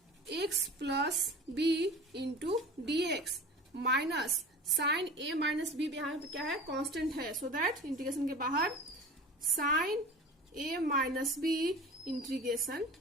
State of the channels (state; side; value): normal; both; correlation 0.37